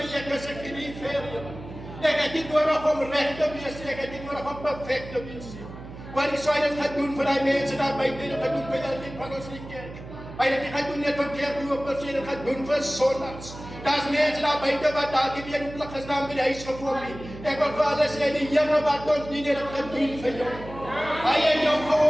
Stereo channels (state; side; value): noise; right; hum, 14 dB below the sound